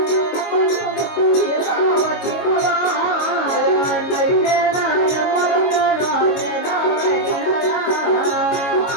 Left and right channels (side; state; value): right; late; 22 ms